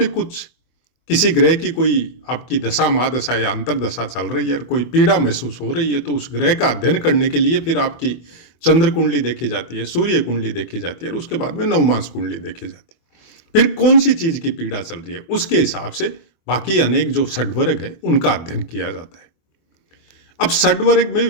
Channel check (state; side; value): late; right; 24 ms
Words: कुछ किसी ग्रह की कोई आपकी दशा महादशा या अंतरदशा चल रही है और कोई पीड़ा महसूस हो रही है, तो उस ग्रह का अध्ययन करने के लिए फिर आपकी चंद्र कुंडली देखी जाती है, सूर्य कुंडली देखी जाती है और उसके बाद में नवमांश कुंडली देखी जाती है। फिर कौन सी चीज की पीड़ा चल रही है उसके हिसाब से बाकी अनेक जो षड्वर्ग है उनका अध्ययन किया जाता है। अब षड्वर्ग में